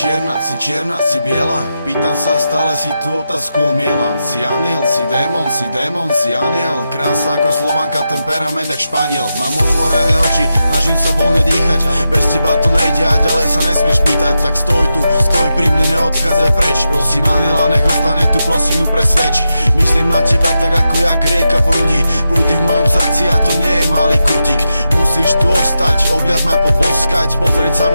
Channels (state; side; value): inverted; both; correlation -0.88